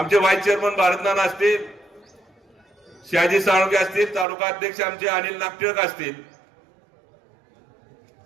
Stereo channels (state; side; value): drops out; left; at 4.2 s